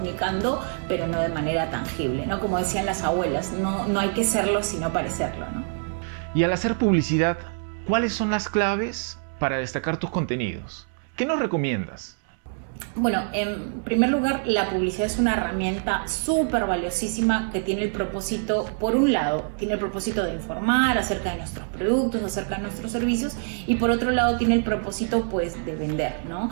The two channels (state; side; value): silent; left; 62 dB below the other